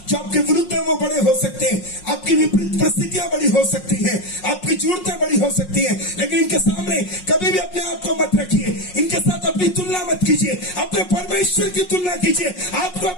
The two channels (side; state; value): right; late; 5.5 ms